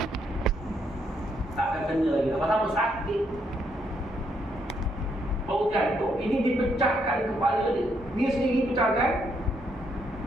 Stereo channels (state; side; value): normal; both; correlation 0.74